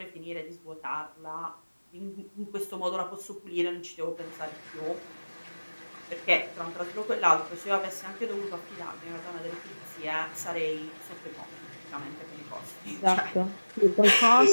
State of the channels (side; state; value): both; inverted; correlation -1.00